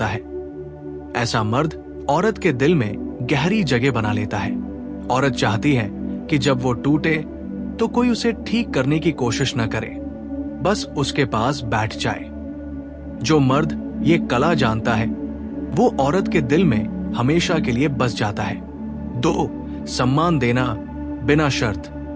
है, ऐसा मर्द औरत के दिल में गहरी जगह बना लेता है। औरत चाहती है कि जब वो टूटे तो कोई उसे ठीक करने की कोशिश न करे, बस उसके पास बैठ जाए। जो मर्द ये कला जानता है वो औरत के दिल में हमेशा के लिए बस जाता है। 2. सम्मान देना, बिना शर्त,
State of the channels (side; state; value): both; identical; correlation 1.00